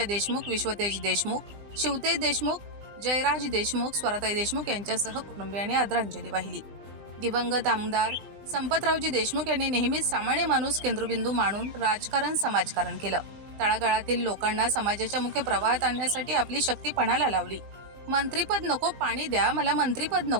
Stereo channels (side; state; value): left; late; 20 ms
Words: देशमुख, विश्वतेज देशमुख, शिवतेज देशमुख, जयराज देशमुख, स्वराताई देशमुख यांच्यासह कुटुंबियांनी आदरांजली वाहिली। दिवंगत आमदार संपतरावजी देशमुख यांनी नेहमीच सामान्य माणूस केंद्रबिंदू मानून राजकारण समाजकारण केलं। तळागाळातील लोकांना समाजाच्या मुख्य प्रवाहात आणण्यासाठी आपली शक्ती पणाला लावली। मंत्रीपद नको पाणी द्या, मला मंत्रीपद